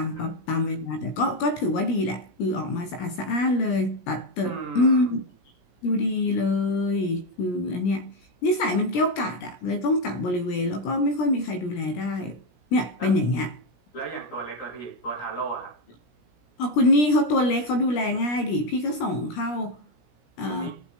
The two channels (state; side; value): late; right; 17 ms